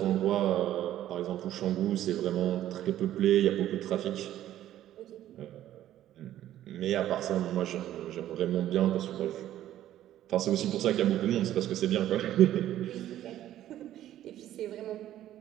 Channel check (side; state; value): left; quieter; 12.6 dB